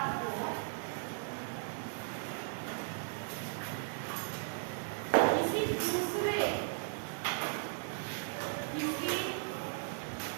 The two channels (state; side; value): silent; left; 53 dB below the other